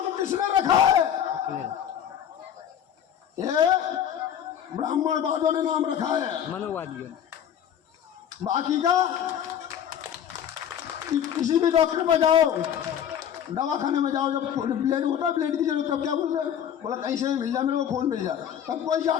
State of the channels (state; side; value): quieter; right; 9.4 dB